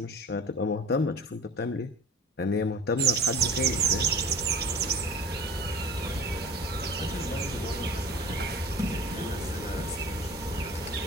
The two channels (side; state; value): both; normal; correlation 0.39